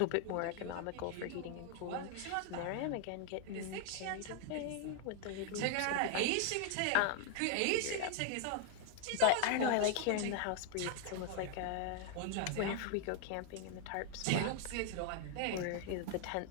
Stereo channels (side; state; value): both; different; correlation 0.00